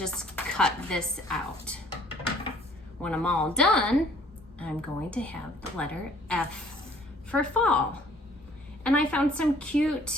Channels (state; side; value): normal; both; correlation 0.56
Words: cut this out. When I'm all done, I'm going to have the letter F for fall. And I found some